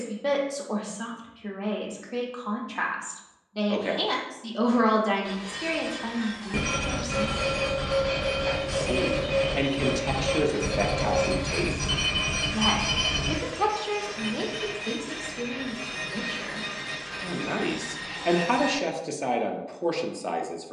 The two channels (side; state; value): both; identical; correlation 1.00